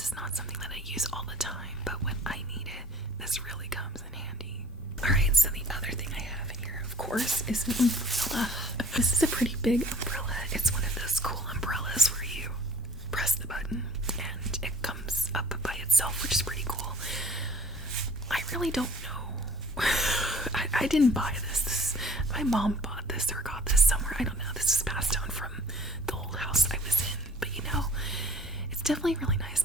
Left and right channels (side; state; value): both; normal; correlation 0.51